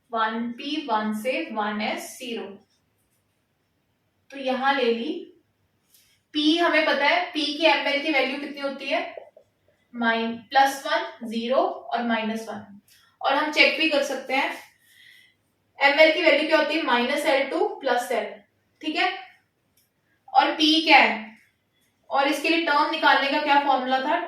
1p1 से 1s0। तो यहां ले ली P, हमें पता है P की ml की वैल्यू कितनी होती है +1 0 और -1, और हम चेक भी कर सकते हैं ml की वैल्यू क्या होती है -L2 + L, ठीक है। और P क्या है, और इसके लिए टर्म निकालने का क्या फॉर्मूला था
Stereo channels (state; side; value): identical; both; correlation 1.00